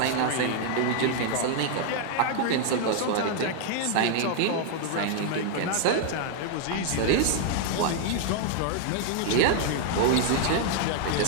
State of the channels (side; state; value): both; different; correlation 0.00